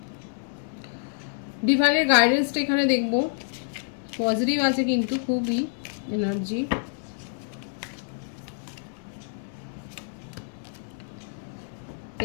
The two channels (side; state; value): right; silent; digital silence